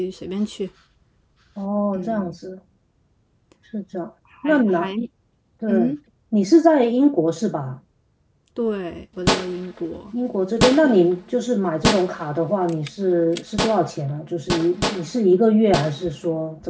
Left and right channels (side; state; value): both; identical; correlation 1.00